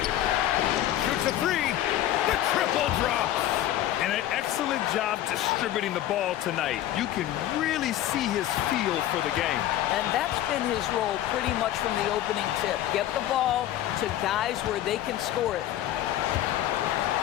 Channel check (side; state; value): right; quieter; 12.9 dB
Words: Shoots a 3. The triple drops. And an excellent job distributing the ball tonight. You can really see his feel for the game. And that's been his role pretty much from the opening tip. Get the ball to guys where they can score it.